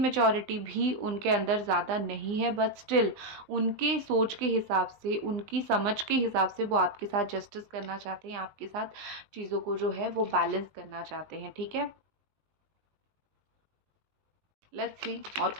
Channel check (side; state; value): left; late; 20 ms